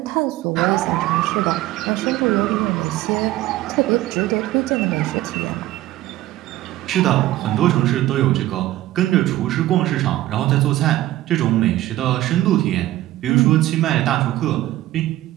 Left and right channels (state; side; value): quieter; left; 15.5 dB